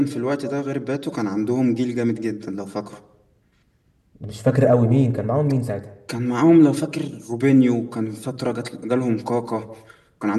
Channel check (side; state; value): both; identical; correlation 1.00